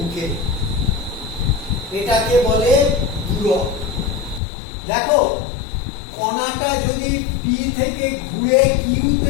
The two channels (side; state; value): right; drops out; at 4.4 s